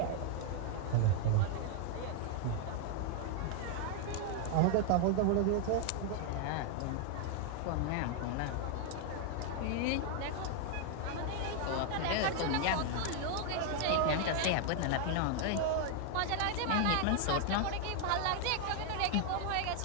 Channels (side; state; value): both; different; correlation 0.00